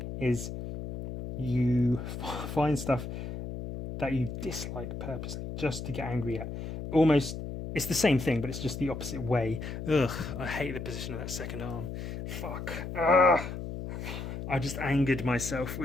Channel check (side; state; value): left; noise; hum, 7 dB below the sound